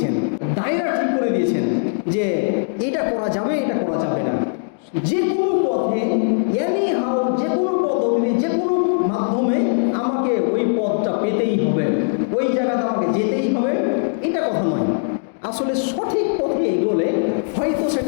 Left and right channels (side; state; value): right; silent; digital silence